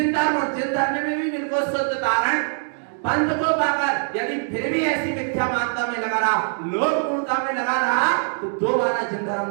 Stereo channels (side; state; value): left; silent; digital silence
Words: धर्म, और जिन धर्म में भी बिल्कुल शुद्ध तारण पंथ को पाकर यदि फिर भी ऐसी मिथ्या मान्यता में लगा रहा, लोक मूर्ता में लगा रहा, तो दोबारा जिन धर्म